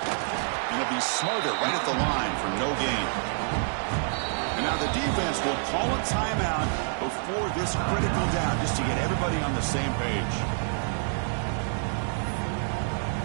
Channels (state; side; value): silent; left; 60 dB below the other